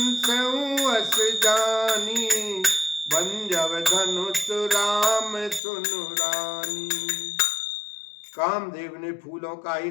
जानी, बंजव धनुष राम सुनु रानी। कामदेव ने फूलों का ही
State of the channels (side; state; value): right; drops out; at 5.6 s